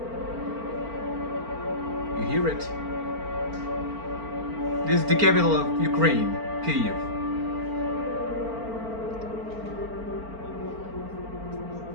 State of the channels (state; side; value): late; left; 4.4 ms